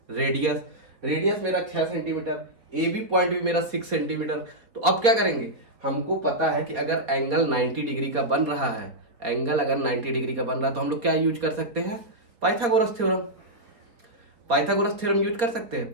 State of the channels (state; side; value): late; left; 4.0 ms